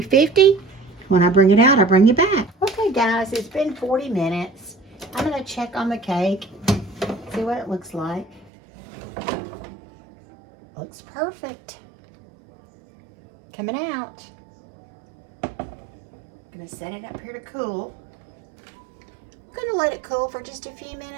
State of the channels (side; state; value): left; drops out; at 8.5 s